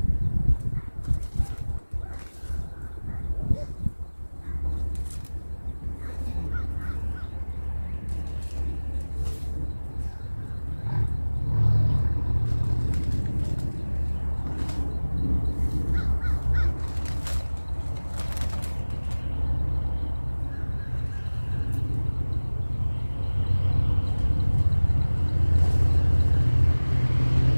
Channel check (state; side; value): inverted; both; correlation -1.00